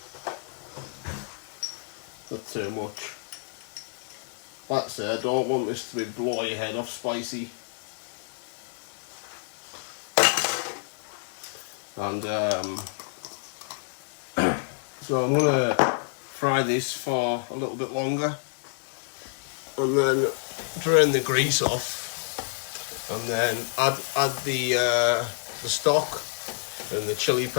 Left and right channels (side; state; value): right; silent; digital silence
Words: Not too much. Like I say, I don't want this to be blow your head off spicy. And so I'm gonna fry this for a little bit longer, and then drain the grease off, and then add the stock and the chili